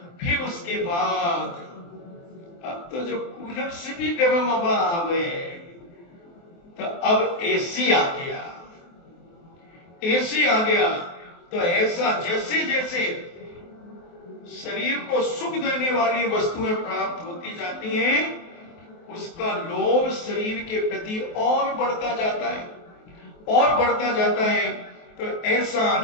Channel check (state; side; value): late; right; 23 ms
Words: फिर उसके बाद अब तो जो कूलर से भी गर्म हवा आवे, तो अब एसी आ गया। तो ऐसा जैसे जैसे शरीर को सुख देने वाली वस्तुएं प्राप्त होती जाती हैं, उसका लोभ शरीर के प्रति और बढ़ता जाता है। तो ऐसा